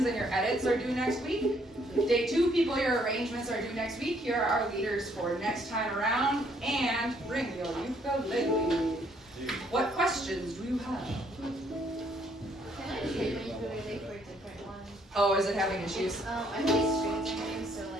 and your edits are due next week. Day 2 people, your arrangements are due next week. Here are our leaders for next time around. And bring your ukulele. What questions do you have? Can I take my ukulele for a different one? Oh, is it having issues? I have these strings in them, so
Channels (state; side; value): normal; both; correlation 0.67